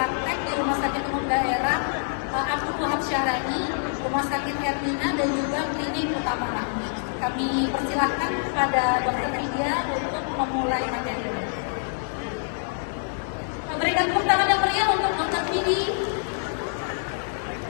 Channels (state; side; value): silent; right; 58 dB below the other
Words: di Rumah Sakit Umum Daerah Abdul Wahab Syahrani, Rumah Sakit Hermina, dan juga Klinik Utama Rahmi. Kami persilahkan kepada Dr. Vidya untuk memulai materi ini. Memberikan tepuk tangan yang meriah untuk Dr. Vidya.